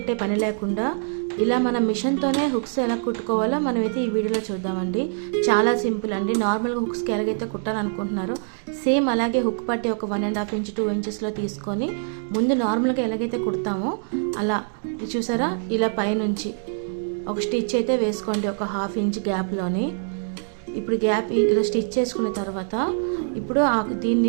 పని లేకుండా ఇలా మన మిషన్తోనే హుక్స్ ఎలా కుట్టుకోవాలో మనమైతే ఈ వీడియోలో చూద్దామండి. చాలా సింపుల్ అండి. నార్మల్గా హుక్స్కి ఎలాగైతే కుట్టాలనుకుంటున్నారో సేమ్ అలాగే హుక్ పట్టి ఒక 1.5 ఇంచ్ 2 ఇంచెస్లో తీసుకొని ముందు నార్మల్గా ఎలాగైతే కుడతామో అలా చూసారా, ఇలా పైనుంచి ఒక స్టిచ్ అయితే వేసుకోండి ఒక 1/2 ఇంచ్ గ్యాప్లోని. ఇప్పుడు గ్యాప్ ఇలా స్టిచ్ చేసుకున్న తర్వాత ఇప్పుడు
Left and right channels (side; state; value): left; silent; digital silence